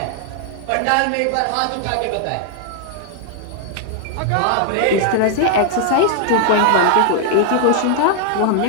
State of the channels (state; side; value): different; both; correlation 0.00